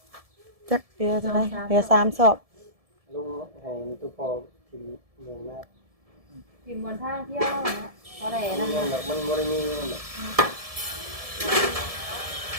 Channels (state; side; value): late; left; 1.7 ms